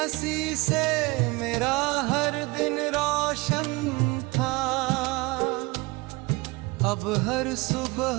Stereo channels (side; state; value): left; quieter; 24.2 dB